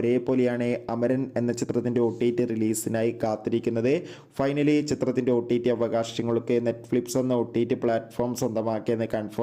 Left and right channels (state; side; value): identical; both; correlation 1.00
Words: അമരൻ എന്ന ചിത്രത്തിൻ്റെ OTT റിലീസിനായി കാത്തിരിക്കുന്നത്. ഫൈനലി ചിത്രത്തിൻ്റെ OTT അവകാശങ്ങളൊക്കെ നെറ്റ്ഫ്ലിക്സ് എന്ന OTT പ്ലാറ്റ്ഫോം സ്വന്തമാക്കിയെന്ന്